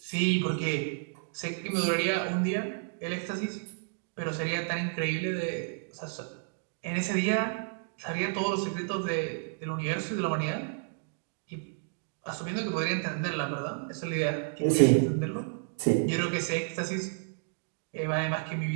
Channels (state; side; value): silent; left; 57 dB below the other